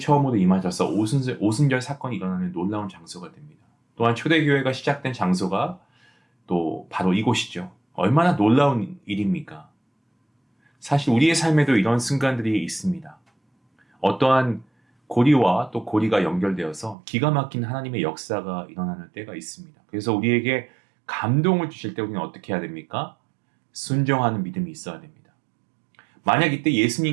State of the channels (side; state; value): left; drops out; at 16.9 s